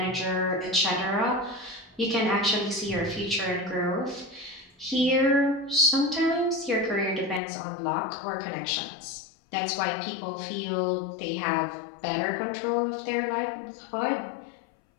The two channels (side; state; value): right; drops out; at 7.4 s